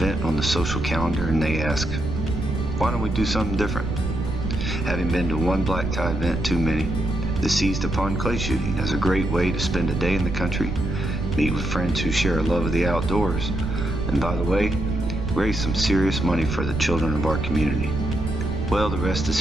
on the social calendar, and they asked, why don't we do something different? Having been to one black tie event too many, they seized upon clay shooting as a great way to spend a day in the country, meet with friends who share a love of the outdoors, and by the way, raise some serious money for the children of our community. Well, the rest is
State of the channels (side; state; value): right; noise; rumble, 4 dB below the sound